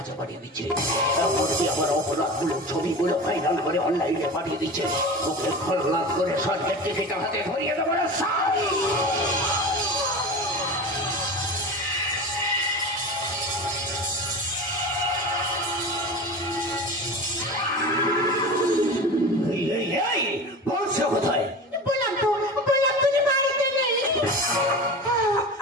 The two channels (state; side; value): normal; both; correlation 0.31